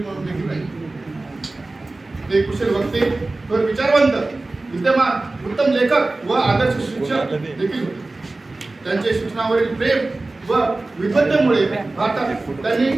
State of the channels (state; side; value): quieter; left; 3.1 dB